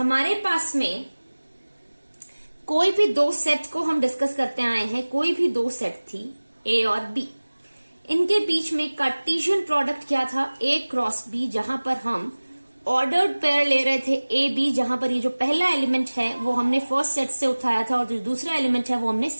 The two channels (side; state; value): both; inverted; correlation -1.00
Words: पास में कोई भी दो सेट को हम डिस्कस करते आए हैं, कोई भी दो सेट थी A और B, इनके बीच में कार्टेशियन प्रोडक्ट क्या था, A क्रॉस B, जहां पर हम ऑर्डर्ड पेयर ले रहे थे A B, जहां पर ये जो पहला एलिमेंट है वो हमने फर्स्ट सेट से उठाया था और जो दूसरा एलिमेंट है वो हमने